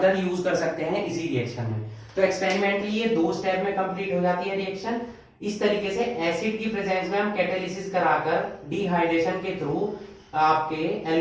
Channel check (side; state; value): both; identical; correlation 1.00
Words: यूज कर सकते हैं इसी रिएक्शन में. तो एक्सपेरिमेंटली ये 2 स्टेप में कंप्लीट हो जाती है रिएक्शन. इस तरीके से एसिड की प्रेजेंस में हम कैटालिसिस कराकर डिहाइड्रेशन के थ्रू, आपके